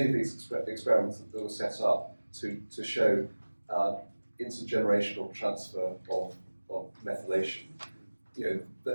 of these experiments that were set up to show intergenerational transfer of methylation,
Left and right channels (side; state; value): both; inverted; correlation -1.00